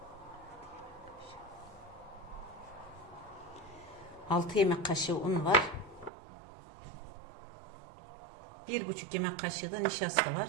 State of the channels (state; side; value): drops out; left; at 6.1 s